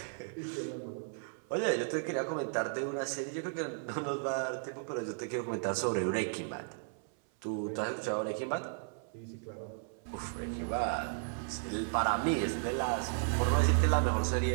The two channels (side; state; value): left; silent; 55 dB below the other